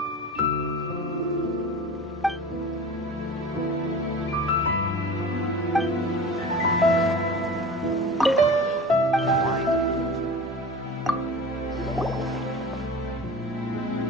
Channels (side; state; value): both; normal; correlation 0.36